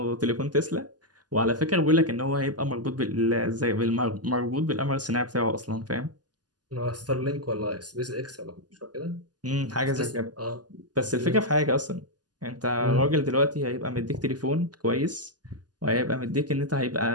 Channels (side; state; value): left; late; 0.69 ms